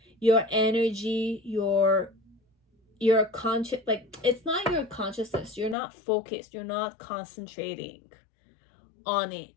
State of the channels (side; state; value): right; drops out; at 5.8 s